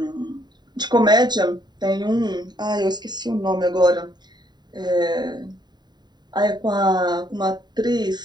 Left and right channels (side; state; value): left; late; 0.21 ms